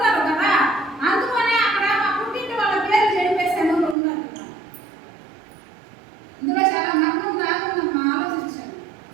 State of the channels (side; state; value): left; drops out; at 4.0 s